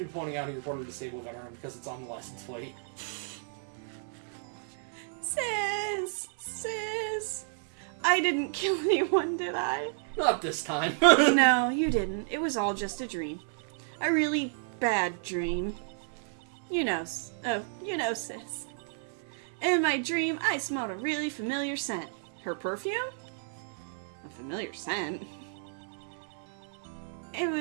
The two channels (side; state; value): left; silent; 57 dB below the other